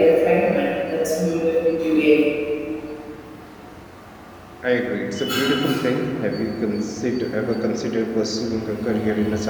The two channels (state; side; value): identical; both; correlation 1.00